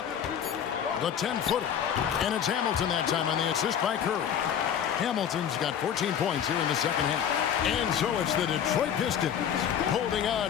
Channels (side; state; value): right; quieter; 8.7 dB